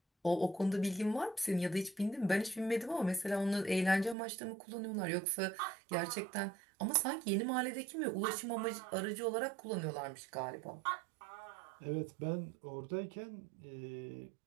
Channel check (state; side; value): drops out; left; at 4.2 s